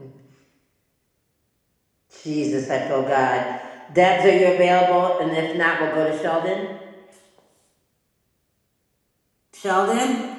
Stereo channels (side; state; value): both; identical; correlation 1.00